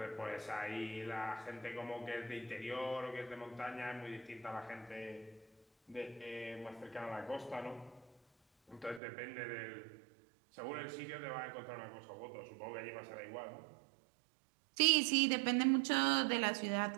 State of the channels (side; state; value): left; drops out; at 9.0 s